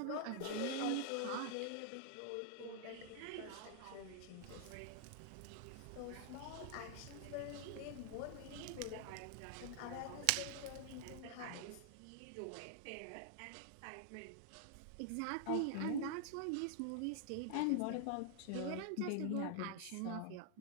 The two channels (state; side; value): different; both; correlation -0.01